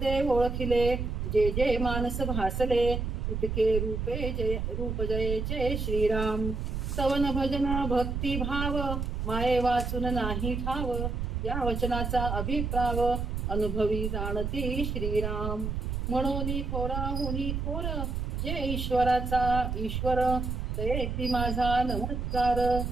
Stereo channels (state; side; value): noise; right; rumble, 2 dB below the sound